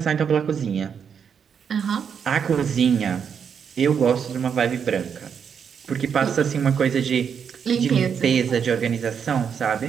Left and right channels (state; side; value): quieter; left; 7.2 dB